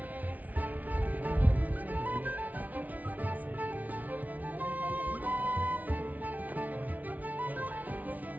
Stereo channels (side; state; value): left; late; 0.074 ms